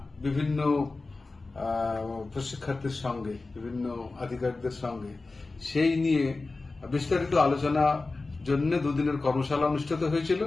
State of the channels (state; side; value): quieter; right; 3.5 dB